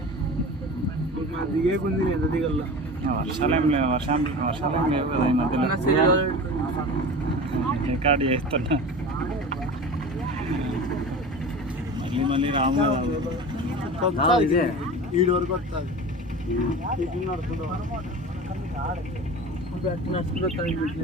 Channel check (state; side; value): normal; both; correlation 0.34